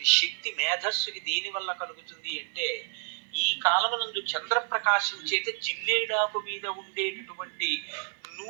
శక్తి మేధస్సుకి దేని వల్ల కలుగుతుంది అంటే, ఈ కాలమునందు చంద్రప్రకాశం చేత జిల్లేడాకు మీద ఉండేటటువంటి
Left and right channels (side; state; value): left; silent; 58 dB below the other